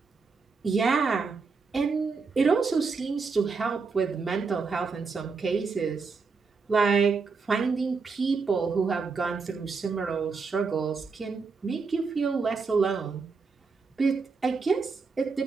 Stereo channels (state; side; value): quieter; left; 4.8 dB